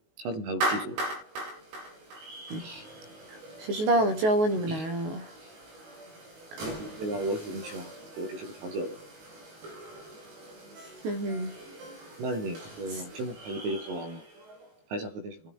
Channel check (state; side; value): late; left; 19 ms